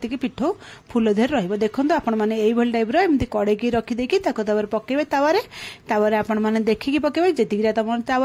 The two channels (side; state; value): both; identical; correlation 1.00